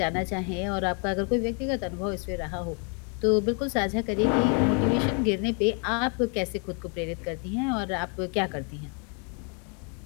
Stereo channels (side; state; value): right; quieter; 38.1 dB